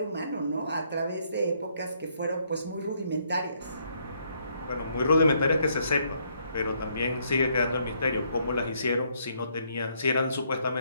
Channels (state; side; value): inverted; both; correlation -0.71